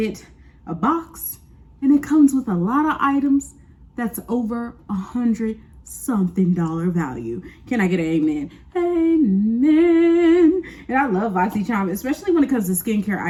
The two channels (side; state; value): both; identical; correlation 1.00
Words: a box. And it comes with a lot of items that's over $100-something value. Can I get an amen? Amen. And I love BoxyCharm, especially when it comes to skincare